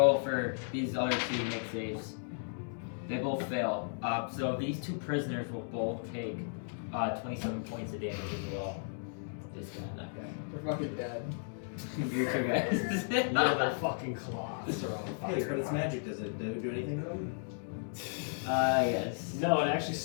for these other two to make saves. They both fail. So these two prisoners will both take 27 points of damage as well. This guy, that guy. They're fucking dead. You two guys. Yeah, their fucking claws are on fire. Hey, but it's magic. Does it do anything to them? Yes. No, it actually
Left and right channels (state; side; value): silent; right; digital silence